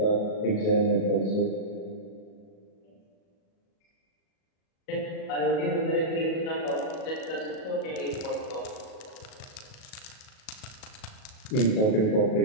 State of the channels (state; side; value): late; right; 37 ms